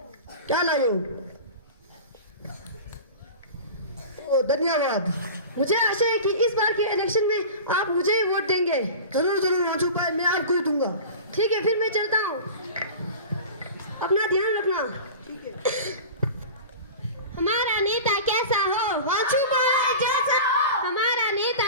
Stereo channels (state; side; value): inverted; both; correlation -0.34